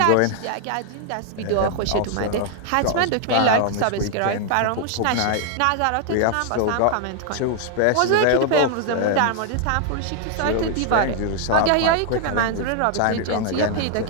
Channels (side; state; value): both; different; correlation 0.00